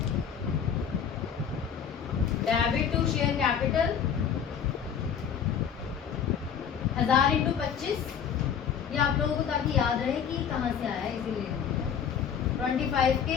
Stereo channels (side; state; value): right; quieter; 7.7 dB